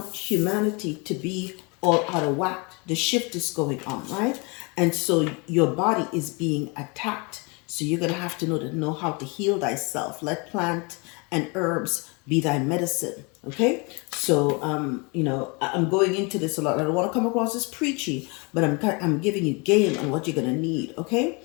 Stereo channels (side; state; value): right; quieter; 30.2 dB